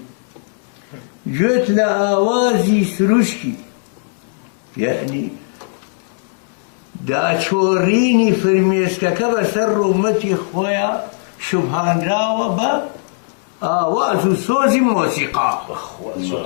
گوێت لە ئاوازی سروشکی یعنی داچۆڕینی فرمێسکەکە بەسەر ڕوومەتی خۆیان شوبهانراوە بە ئاواز و سۆزی مۆسیقا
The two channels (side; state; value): right; silent; digital silence